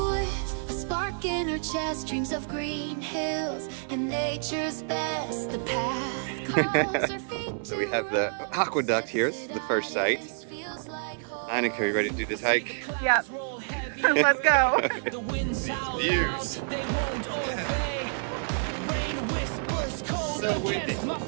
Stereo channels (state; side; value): silent; left; 59 dB below the other